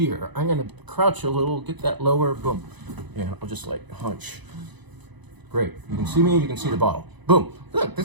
I'm going to crouch a little, get that lower, boom. Yeah, I'll just like hunch. Great. You can see me, you can see the bottle. Boom. Look,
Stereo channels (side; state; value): left; late; 1.0 ms